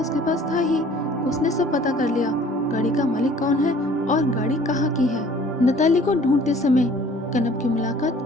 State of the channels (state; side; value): normal; both; correlation 0.53